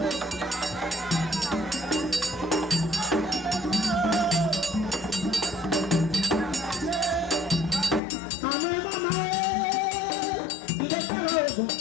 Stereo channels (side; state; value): right; drops out; at 8.0 s